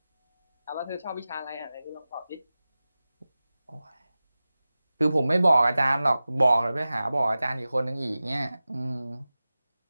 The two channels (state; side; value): inverted; both; correlation -0.96